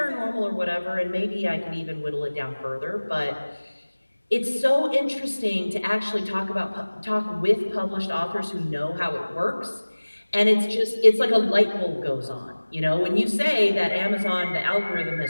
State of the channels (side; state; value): both; inverted; correlation -1.00